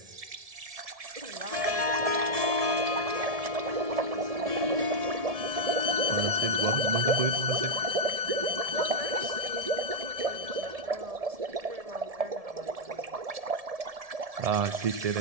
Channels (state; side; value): late; left; 1.7 ms